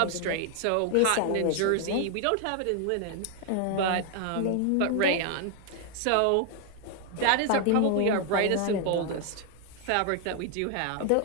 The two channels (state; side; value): different; both; correlation 0.00